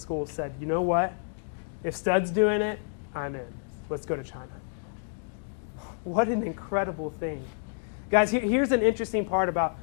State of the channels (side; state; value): right; silent; digital silence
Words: said, you know what? If Studd's doing it, I'm in. Let's go to China. What an incredible thing. Guys, here's an interesting part about